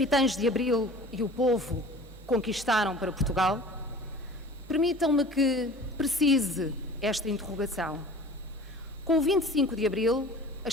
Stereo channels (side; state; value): both; normal; correlation 0.43